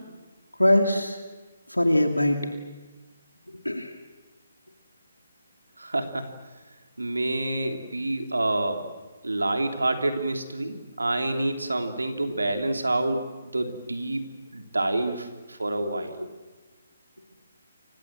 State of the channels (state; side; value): inverted; both; correlation -0.92